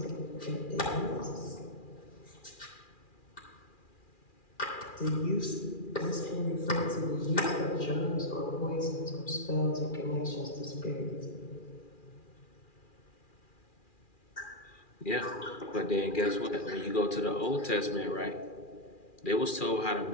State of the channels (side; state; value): right; late; 2.4 ms